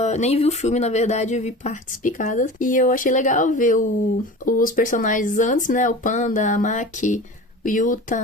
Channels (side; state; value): both; normal; correlation 0.35